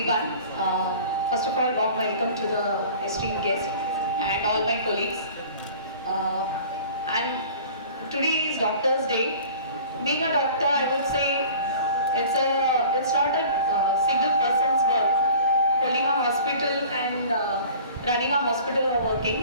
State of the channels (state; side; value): inverted; both; correlation -0.45